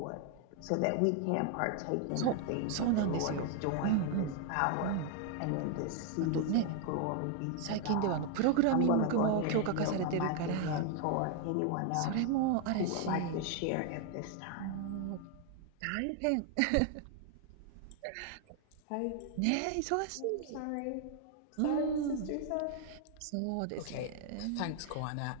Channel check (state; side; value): different; both; correlation 0.00